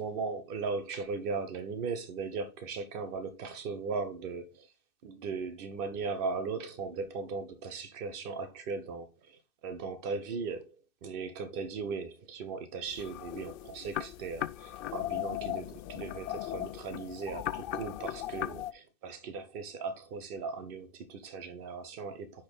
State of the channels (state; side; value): late; left; 2.6 ms